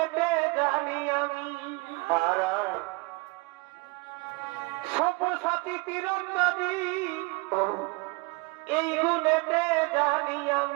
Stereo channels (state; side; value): quieter; left; 27.6 dB